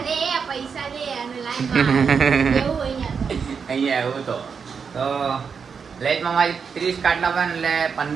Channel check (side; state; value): left; quieter; 6.1 dB